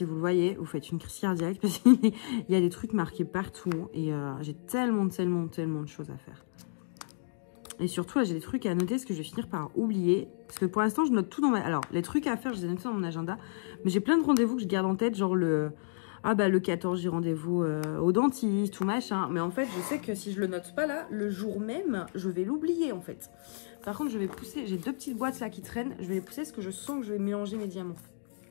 vous le voyez, vous faites une crise cardiaque parce qu'il y a des trucs marqués partout. Et j'ai tellement de choses à faire. Et surtout, là, j'ai des trucs à noter, ce que je vais finir par oublier. Parce que pour l'instant, je note tout dans ma... Alors, les trucs à faire, je les ai notés dans mon agenda. Mais j'ai plein de rendez-vous que je garde en tête, genre le 14, j'ai rendez-vous au dentiste, tout machin. Mais en fait, je sais que si je le note pas là, le jour même, je vais l'oublier, en fait. Par contre, je vais pousser... J'ai 2 petites boîtes là qui traînent. Je vais les pousser parce que je sens que je vais mélanger mes diamants.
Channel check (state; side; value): silent; right; digital silence